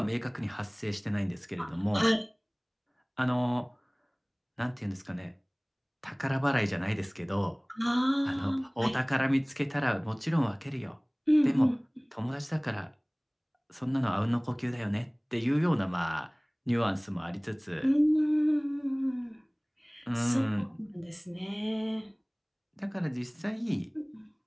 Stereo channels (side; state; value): both; identical; correlation 1.00